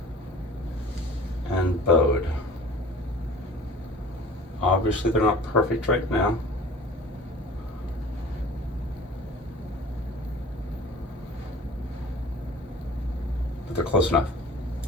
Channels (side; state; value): both; normal; correlation 0.44